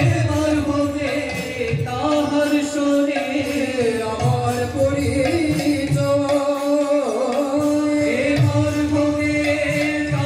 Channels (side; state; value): both; identical; correlation 1.00